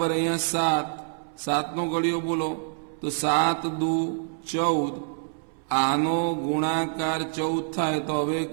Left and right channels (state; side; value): silent; left; 61 dB below the other